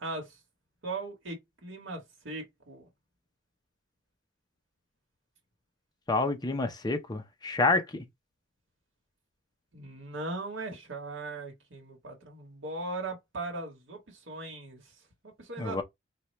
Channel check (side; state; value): both; normal; correlation 0.13